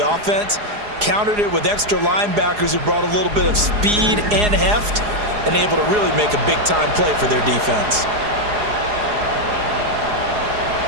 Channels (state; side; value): late; left; 4.8 ms